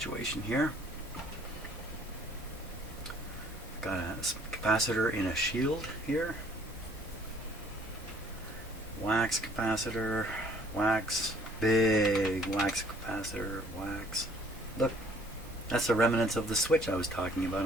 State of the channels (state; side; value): normal; both; correlation 0.59